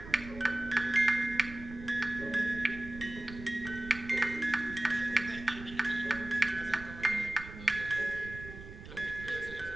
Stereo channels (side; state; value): right; noise; rumble, 13 dB below the sound